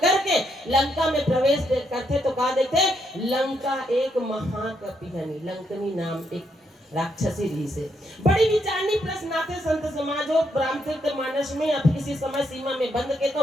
लंका में प्रवेश करते तो कहा देखते लंका एक महाकपिहनी, लंकनी नाम एक राक्षसी री से। बड़ी विचारनी प्रश्न आते संत समाज हो रामचरित मानस में, अब किसी समय सीमा में बंद के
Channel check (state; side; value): normal; both; correlation 0.77